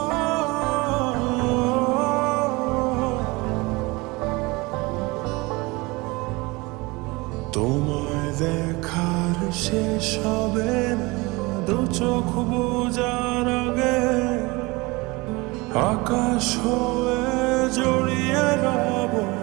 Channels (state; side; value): quieter; left; 24.1 dB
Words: তোমায় দেখার শেষ হবে না দু চোখ বোঝার আগে। আকাশ হয়ে জড়িয়ে রব